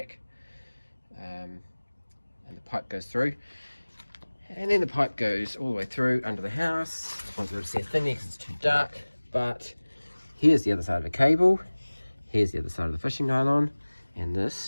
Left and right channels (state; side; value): inverted; both; correlation -1.00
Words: and the pipe goes through, and then the pipe goes all the way through under the house. I won't be able to see a thing there because it's too dark, but here's the other side of the cable, here's the other side of the fishing nylon, and